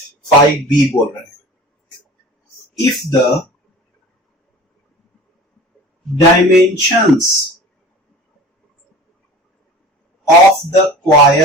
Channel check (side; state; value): both; normal; correlation 0.40